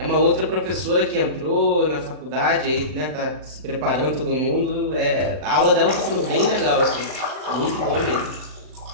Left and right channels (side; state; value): left; late; 39 ms